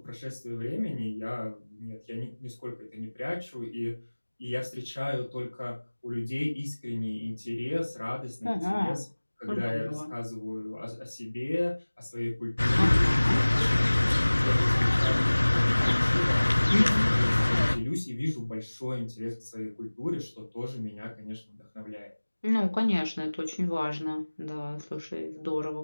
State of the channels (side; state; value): both; inverted; correlation -1.00